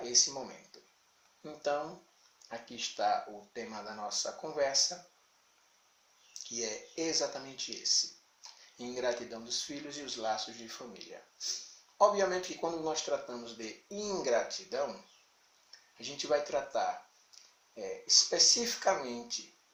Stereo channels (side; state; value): both; identical; correlation 1.00